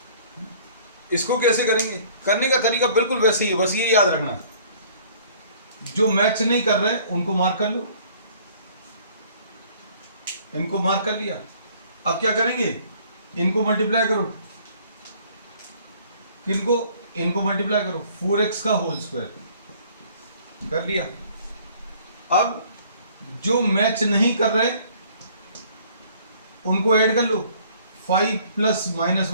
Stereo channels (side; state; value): both; inverted; correlation -0.56